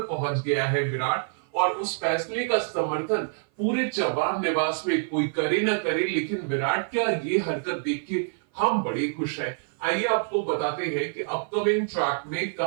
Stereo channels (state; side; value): silent; left; 56 dB below the other